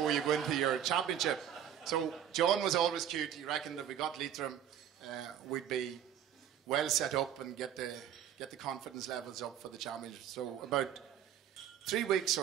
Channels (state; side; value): quieter; left; 9.8 dB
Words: you go into your championship. So John was always cute. He reckoned that we got Leitrim, we'd be well set up and get the confidence levels up for the championship. So about 3 weeks